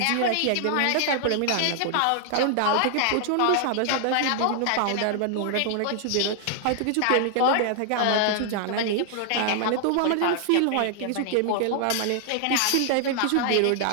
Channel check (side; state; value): both; different; correlation 0.00